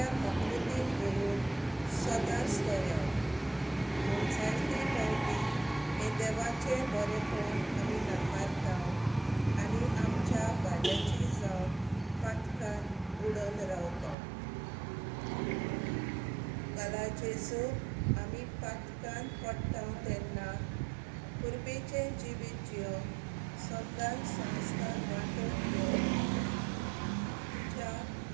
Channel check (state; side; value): drops out; left; at 14.2 s